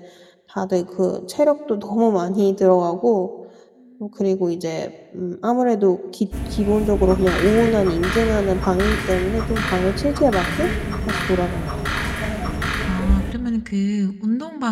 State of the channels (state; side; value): identical; both; correlation 1.00